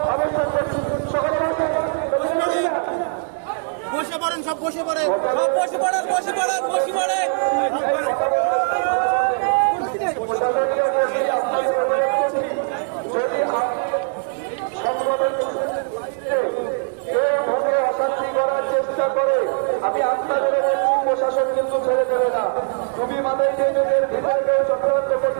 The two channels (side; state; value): left; silent; digital silence